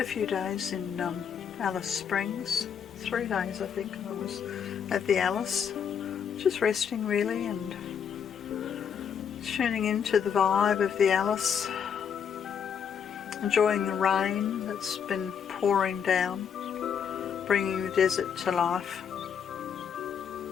few days in Alice Springs, 3 days I think I was at the Alice, just resting really and tuning into the vibe of the Alice, enjoying the rain that's been pouring down, bringing the desert to life.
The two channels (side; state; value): right; quieter; 7.6 dB